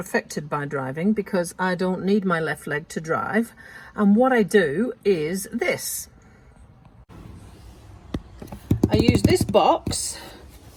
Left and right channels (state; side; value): identical; both; correlation 1.00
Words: by driving because I don't need my left leg to drive. And what I do is this. I use this box